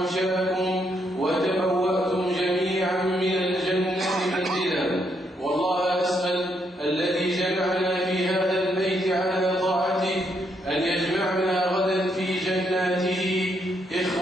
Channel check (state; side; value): normal; both; correlation 0.76